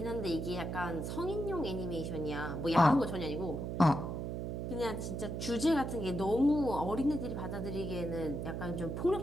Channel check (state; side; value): noise; right; hum, 3 dB below the sound